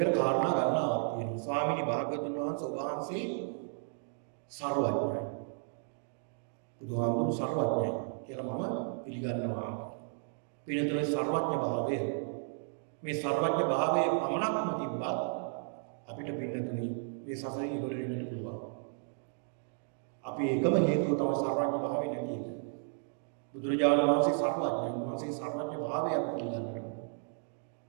කාරණා ගන්නවා තියෙනවා. ස්වාමීනි භාග්‍යවතුන් වහන්සේ ඔබ වහන්සේ සර්වඥයි. බුදුහාමුදුරු සර්වඥයි කියලා මම පිළිගන්නවා. පිළිතුරේ සර්වඥ භාවය මේ සර්වඥ භාවයේ පමණක්ම තිබ්බත් අපිට පින්නතුනි මේ සසරින් ඉවර වෙන්නට පුළුවන්. අපි එකම හේතුව තමයි සර්වඥ භාවය නැති එක. බුදුරජාණන් වහන්සේ සර්වඥයි. උන්වහන්සේ සර්වඥ භාවය අපි පිළිගන්නවා.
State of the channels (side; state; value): left; silent; 55 dB below the other